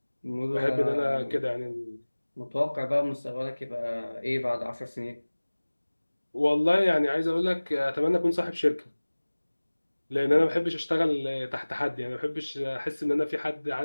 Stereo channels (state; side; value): inverted; both; correlation -1.00